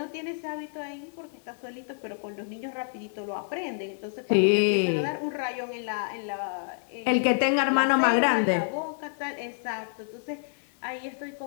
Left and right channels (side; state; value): right; silent; 59 dB below the other